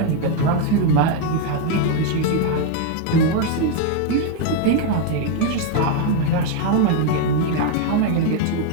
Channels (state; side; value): different; both; correlation 0.01